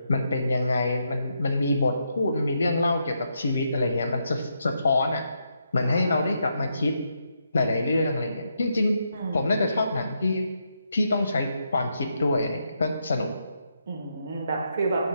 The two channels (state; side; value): inverted; both; correlation -0.80